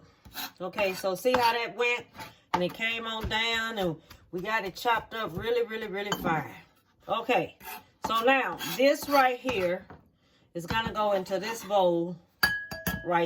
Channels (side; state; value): both; identical; correlation 1.00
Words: Okay, so see how that went? And it came on down and we got it chopped up really, really, really fine. Okay, so now this right here is going to go into this bowl